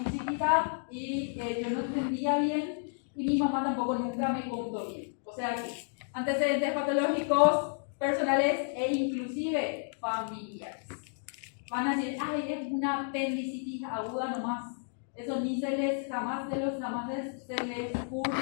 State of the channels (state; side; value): silent; right; digital silence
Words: chiquita y yo no entendía bien y mi mamá tampoco nunca me contó bien. O sea que antecedentes patológicos personales e inclusive familiares. Van a decir, ay, es una apendicitis aguda nomás. Eso ni se les jamás se les